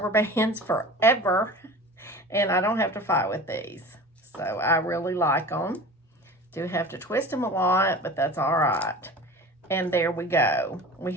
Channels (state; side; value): normal; both; correlation 0.37